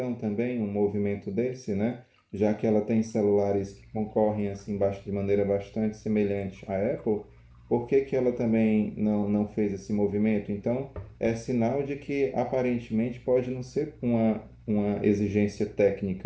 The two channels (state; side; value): identical; both; correlation 1.00